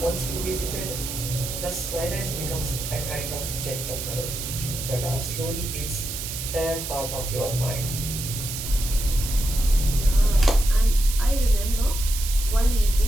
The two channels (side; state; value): right; noise; hiss, 6 dB below the sound